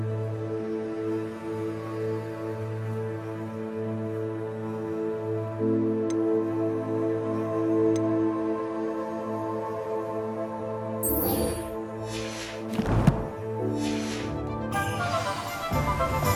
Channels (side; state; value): both; identical; correlation 1.00